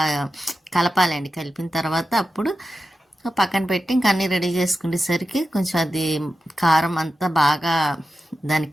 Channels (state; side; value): normal; both; correlation 0.92